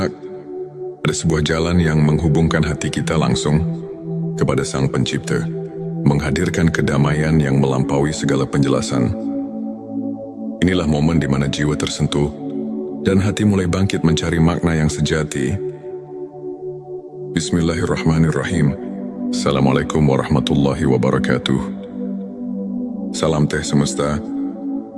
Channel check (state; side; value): identical; both; correlation 1.00